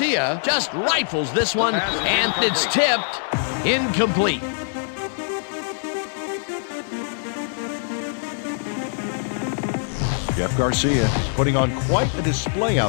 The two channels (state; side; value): silent; right; digital silence